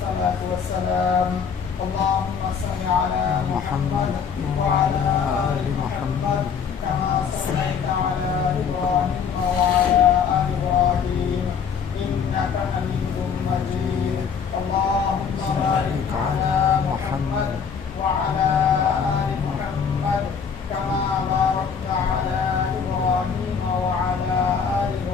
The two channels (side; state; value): right; quieter; 6.6 dB